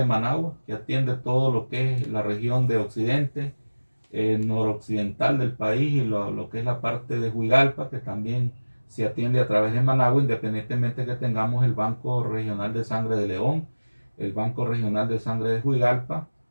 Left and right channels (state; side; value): inverted; both; correlation -1.00